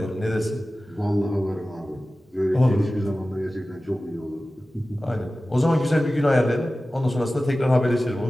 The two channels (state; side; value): normal; both; correlation 0.96